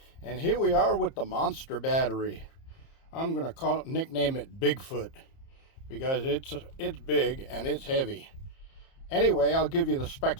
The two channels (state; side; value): late; right; 30 ms